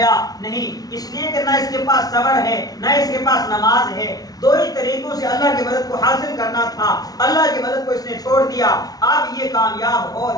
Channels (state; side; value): late; right; 0.18 ms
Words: نہیں، اس لیے کہ نہ اس کے پاس صبر ہے، نہ اس کے پاس نماز ہے. 2 ہی طریقوں سے اللہ کی مدد کو حاصل کرنا تھا، اللہ کی مدد کو اس نے چھوڑ دیا. اب یہ کامیاب ہو